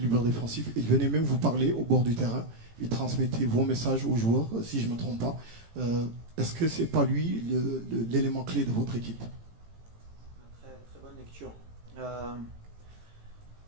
défensif. Il venait même vous parler au bord du terrain. Il transmettait vos messages aux joueurs, si je ne me trompe pas. Est-ce que ce n'est pas lui l'élément clé de votre équipe? Très, très bonne lecture.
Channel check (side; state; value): left; late; 18 ms